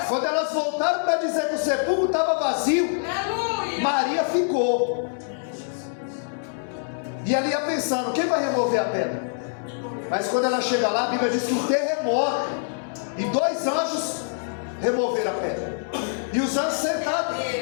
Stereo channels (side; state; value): right; silent; digital silence